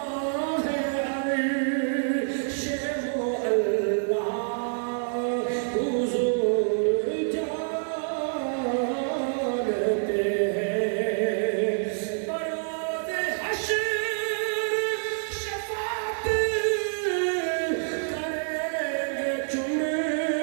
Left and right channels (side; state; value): left; silent; 60 dB below the other